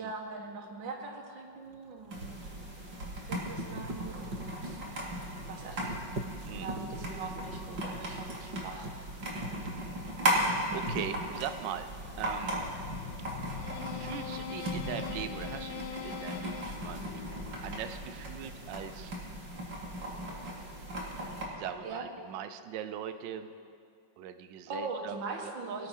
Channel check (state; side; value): late; left; 5.6 ms